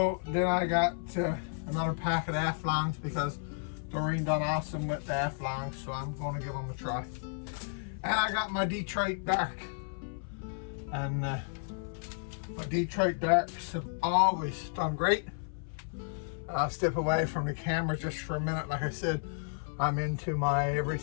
then I got another pack of half-longs because Doreen done awesome with the half-longs, so I'm going to give them a try. And I got my Detroit Dark, and my Detroit Darks have always done great. I'll step away from the camera just for a minute. Like I said, I'm into my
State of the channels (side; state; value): right; silent; 56 dB below the other